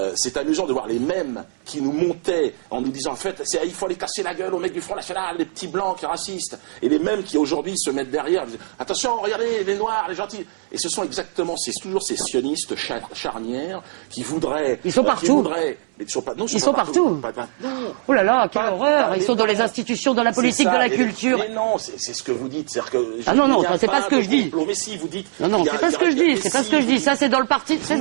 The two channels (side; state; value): left; silent; 65 dB below the other